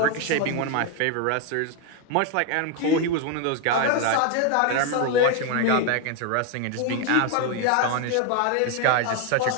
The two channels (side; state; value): both; different; correlation 0.01